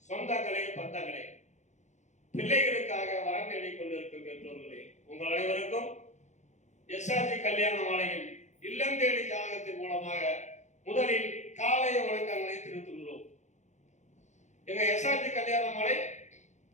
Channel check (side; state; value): right; late; 0.34 ms